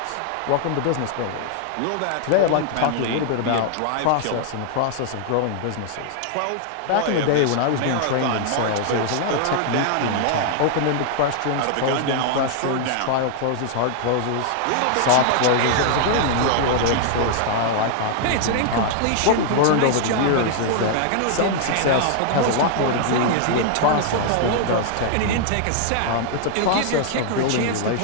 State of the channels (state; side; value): different; both; correlation -0.01